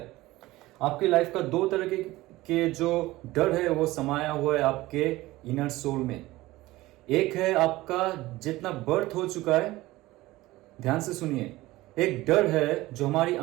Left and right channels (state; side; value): quieter; left; 18.4 dB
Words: आपकी लाइफ का दो तरह के जो डर है वो समाया हुआ है आपके इनर सोल में। एक है आपका जितना बर्थ हो चुका है, ध्यान से सुनिए। एक डर है जो हमारी